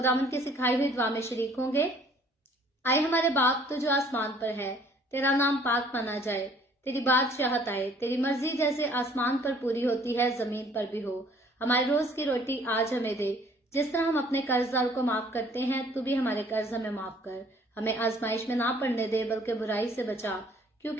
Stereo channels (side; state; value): both; normal; correlation 0.57